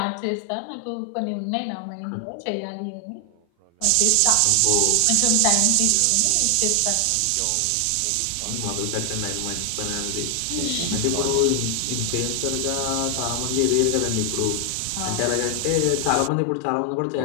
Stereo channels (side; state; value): both; different; correlation 0.00